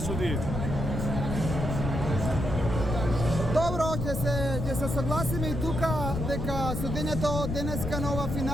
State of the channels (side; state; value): left; noise; rumble, 3 dB below the sound